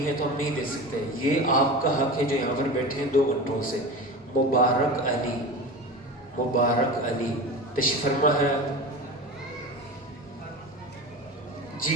ہے تو ہم نہیں دے سکتے. یہ آپ کا حق ہے جو یہاں پر بیٹھے ہیں 2 گھنٹوں سے. مبارک علی, مبارک علی تشریف فرما ہے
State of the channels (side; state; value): both; normal; correlation 0.30